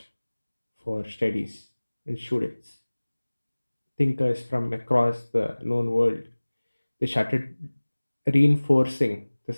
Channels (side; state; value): both; inverted; correlation -1.00